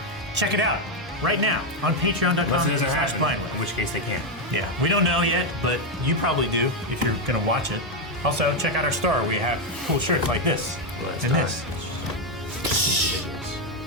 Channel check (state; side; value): normal; both; correlation 0.04